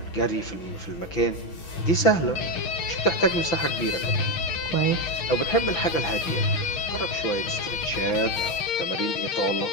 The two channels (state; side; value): late; right; 6.0 ms